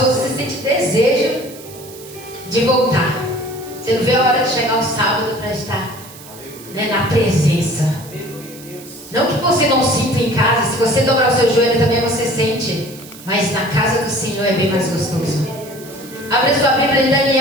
você sente desejo de voltar. Você não vê a hora de chegar o sábado para estar, né, na presença. Não que você não sinta em casa. Se você dobrar o seu joelho também você sente. Mas na casa do Senhor é bem mais gostoso. Abre sua Bíblia em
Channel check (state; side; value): noise; right; hiss, 18 dB below the sound